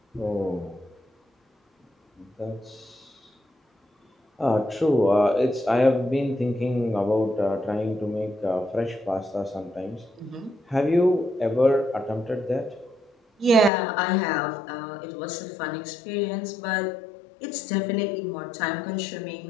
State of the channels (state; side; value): drops out; right; at 13.7 s